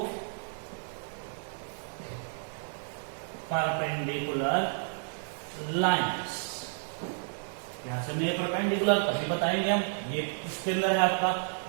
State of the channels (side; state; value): left; silent; 57 dB below the other